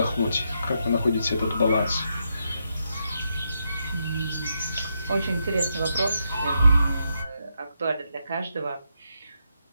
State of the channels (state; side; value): inverted; both; correlation -0.82